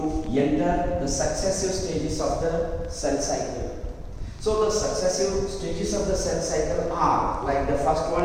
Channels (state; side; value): identical; both; correlation 1.00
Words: enter the successive stages of the cell cycle. So the successive stages of the cell cycle are, like the first